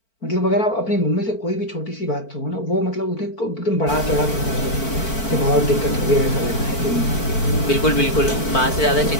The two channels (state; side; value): late; right; 4.5 ms